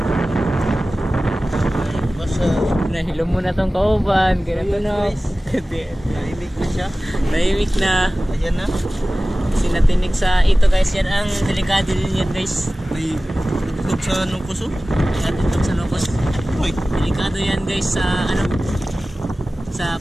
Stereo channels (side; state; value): both; normal; correlation 0.97